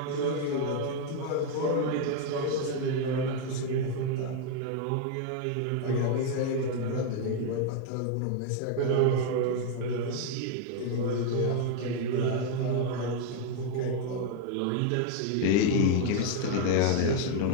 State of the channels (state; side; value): different; both; correlation 0.00